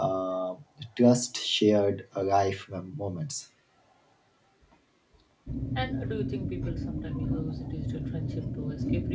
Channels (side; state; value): both; identical; correlation 1.00